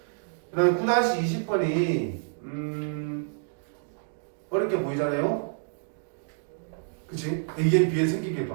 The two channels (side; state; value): left; silent; digital silence